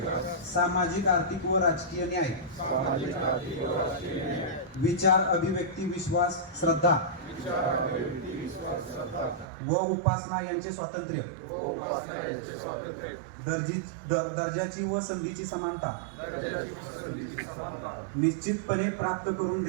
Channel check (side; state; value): left; drops out; at 9.5 s